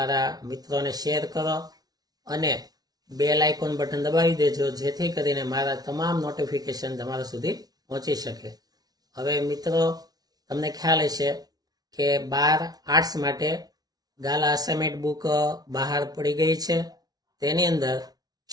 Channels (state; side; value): late; left; 0.19 ms